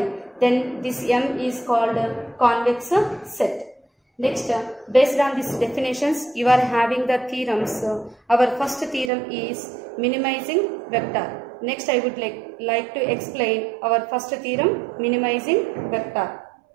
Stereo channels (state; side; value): drops out; left; at 9.1 s